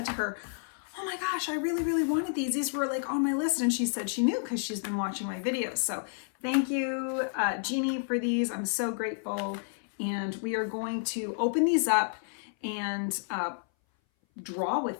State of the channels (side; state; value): right; silent; 58 dB below the other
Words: to her, oh my gosh, I really wanted these. These were like on my list. And she said she knew because she's been watching my videos. So thank you, Jeannie, for these. I'm so grateful. And we are going to open these up and draw